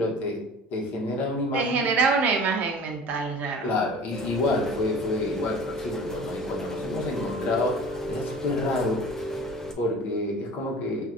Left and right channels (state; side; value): normal; both; correlation 0.41